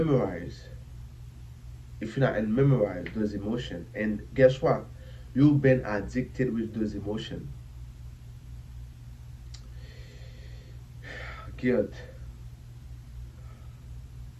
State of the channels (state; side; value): identical; both; correlation 1.00